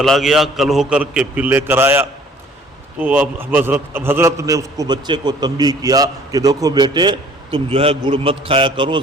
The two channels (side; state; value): both; normal; correlation 0.55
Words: گیا، کل ہو کر کے پھر لے کر آیا. تو اب حضرت نے اس کو بچے کو تنبیہ کیا کہ دیکھو بیٹے، تم جو ہے گڑ مت کھایا کرو،